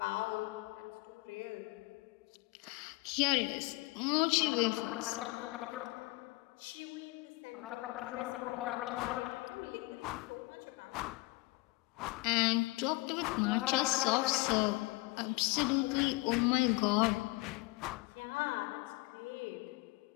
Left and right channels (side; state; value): right; quieter; 23.3 dB